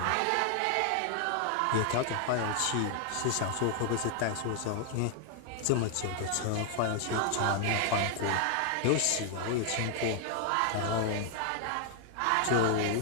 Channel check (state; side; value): different; both; correlation 0.00